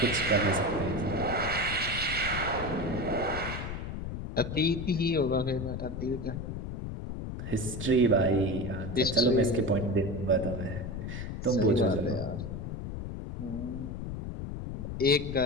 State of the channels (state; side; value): noise; left; rumble, 6 dB below the sound